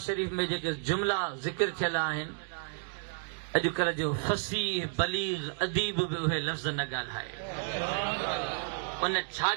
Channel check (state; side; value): silent; left; digital silence